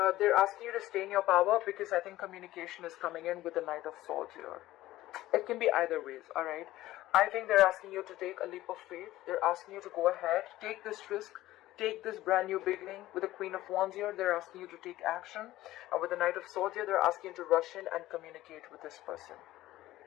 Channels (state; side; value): quieter; right; 15.9 dB